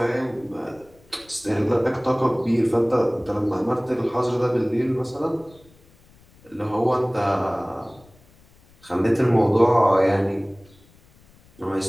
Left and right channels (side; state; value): left; noise; rumble, 28 dB below the sound